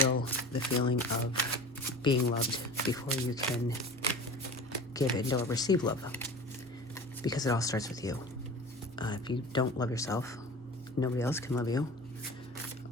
the feeling of being loved before you can give in or receive love. Because it all starts with you. If you don't love yourself, nobody else can love you.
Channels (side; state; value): both; normal; correlation 0.37